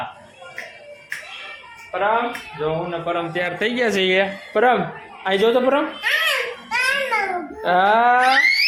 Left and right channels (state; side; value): identical; both; correlation 1.00